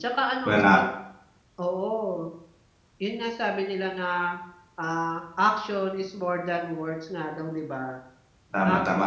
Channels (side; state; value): both; identical; correlation 1.00